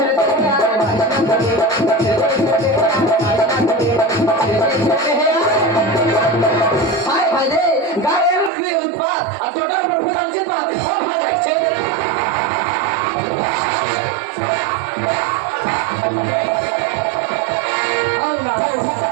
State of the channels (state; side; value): drops out; left; at 8.5 s